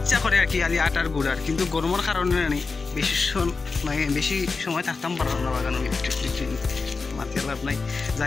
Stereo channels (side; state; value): right; quieter; 4.3 dB